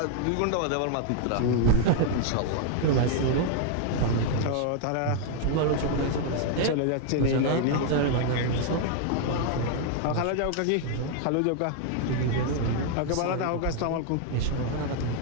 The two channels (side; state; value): both; different; correlation 0.00